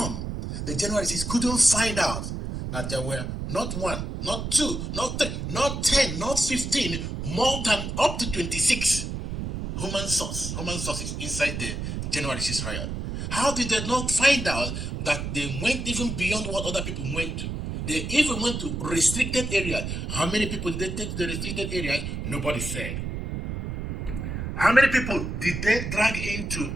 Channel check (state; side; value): noise; right; rumble, 4 dB below the sound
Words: the January 6th couldn't find out that there were not one, not two, not three, not 10, not 15, more than up to 26 human sources inside the January 6th riot? How did they not find out that they went even beyond what other people went to? They even went to restricted areas. How many people did they take to the restricted areas? Nobody said. How many people did they drag into